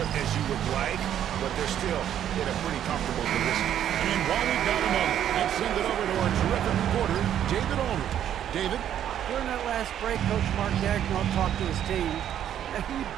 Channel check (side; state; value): left; quieter; 10.3 dB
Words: as you would like, but they're still in a pretty comfortable position. And while we've got a moment, let's send it over to our terrific reporter, David Aldridge. David? During that last break, Coach Mark Dagnall talked to his team, and he